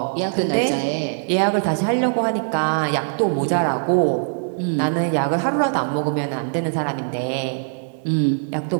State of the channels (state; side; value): silent; left; digital silence